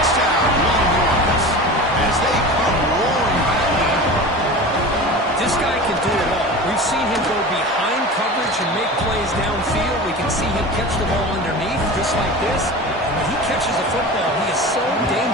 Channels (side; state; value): both; normal; correlation 0.32